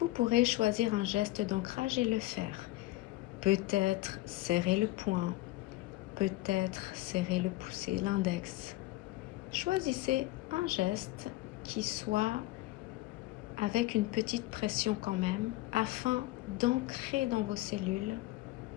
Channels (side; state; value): right; quieter; 18.4 dB